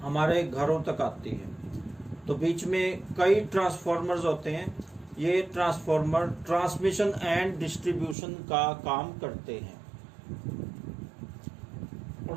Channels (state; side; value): drops out; left; at 8.2 s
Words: हमारे घरों तक आती है। तो बीच में कई ट्रांसफार्मर्स होते हैं। ये ट्रांसफार्मर ट्रांसमिशन एंड डिस्ट्रीब्यूशन का काम करते हैं।